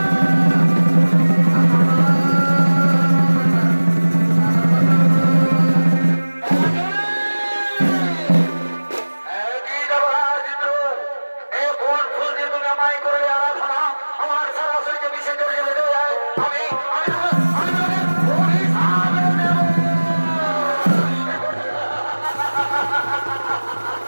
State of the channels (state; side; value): inverted; both; correlation -1.00